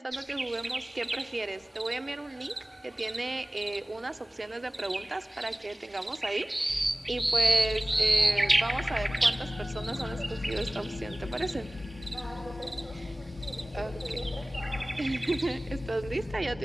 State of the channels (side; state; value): both; normal; correlation 0.98